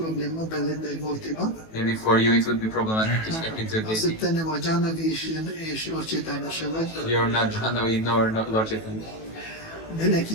belépni egy multiba, Maybe for you it would be problematic to step into a az, deity. hogy te nem vagy Jhanavi és Lord Chaitanya se vagy, You're not Jhanavi nor not Lord Chaitanya. de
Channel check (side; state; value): right; late; 18 ms